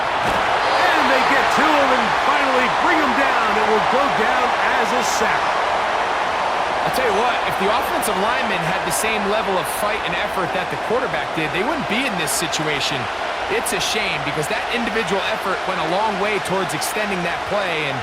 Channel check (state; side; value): identical; both; correlation 1.00